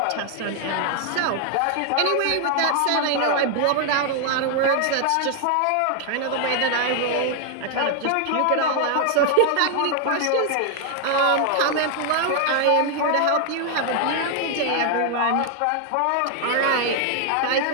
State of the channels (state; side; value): different; both; correlation 0.00